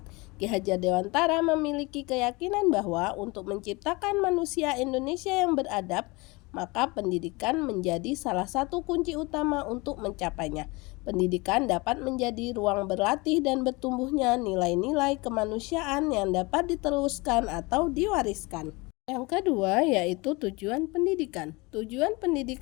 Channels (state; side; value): quieter; right; 25.3 dB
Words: Ki Hajar Dewantara memiliki keyakinan bahwa untuk menciptakan manusia Indonesia yang beradab, maka pendidikan menjadi salah satu kunci utama untuk mencapainya. Pendidikan dapat menjadi ruang berlatih dan bertumbuhnya nilai-nilai kemanusiaan yang dapat diteruskan atau diwariskan. Yang kedua yaitu tujuan pendidikan. Tujuan